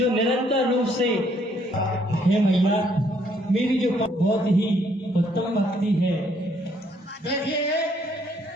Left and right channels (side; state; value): both; normal; correlation 0.68